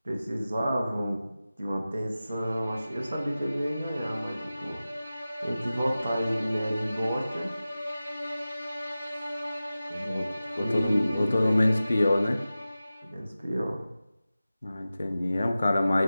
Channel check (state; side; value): inverted; both; correlation -0.95